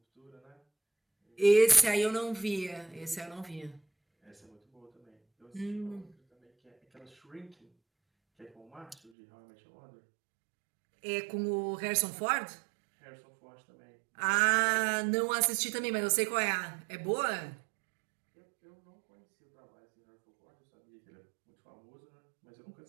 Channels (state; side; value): drops out; left; at 9.1 s